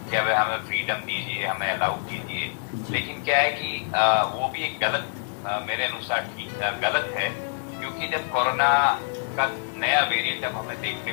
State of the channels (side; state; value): right; silent; 61 dB below the other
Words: कि अब हमें फ्रीडम दीजिए, हमें अलाउ कीजिए। लेकिन क्या है कि वो भी एक गलत, मेरे अनुसार गलत है, क्योंकि जब कोरोना का नया वेरिएंट अब हमें